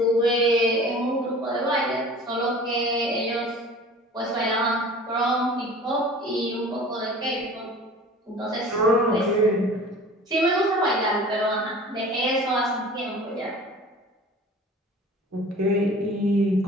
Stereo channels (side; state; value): both; normal; correlation 0.43